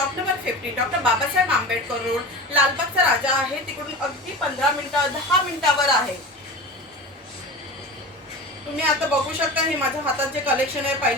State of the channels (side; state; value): both; normal; correlation 0.31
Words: number 50, doctor Babasaheb Ambedkar road, लालबागचा राजा आहे। तिकडून अगदी 15 मिनिटं 10 मिनिटावर आहे। तुम्ही आता बघू शकता हे माझ्या हातात जे कलेक्शन आहे,